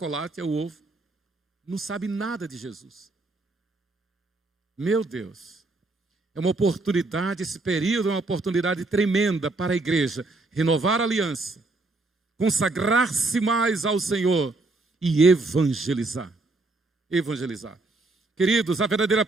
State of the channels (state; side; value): quieter; left; 3.2 dB